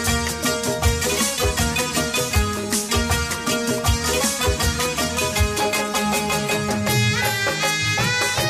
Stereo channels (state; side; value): identical; both; correlation 1.00